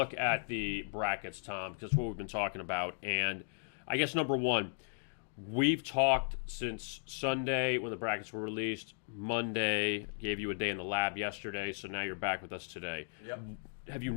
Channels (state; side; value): silent; right; digital silence